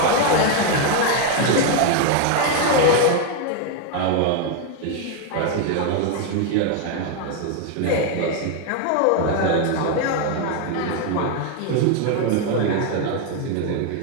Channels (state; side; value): different; both; correlation 0.01